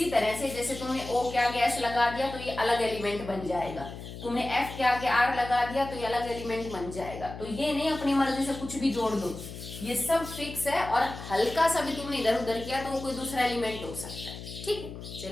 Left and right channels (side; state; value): left; noise; hum, 11 dB below the sound